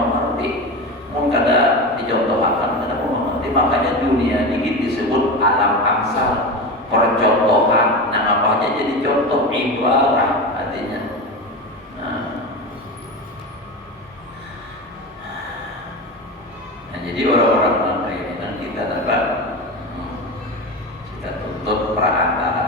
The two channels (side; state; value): both; normal; correlation 0.24